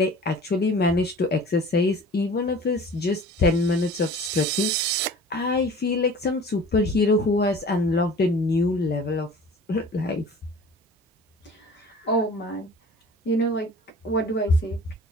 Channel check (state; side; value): normal; both; correlation 0.43